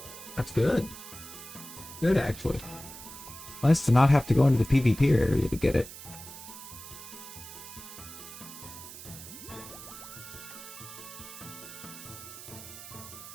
good. Good, actually. Nice to not have to go into the PvP area to get it.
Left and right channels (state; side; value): noise; right; hiss, 13 dB below the sound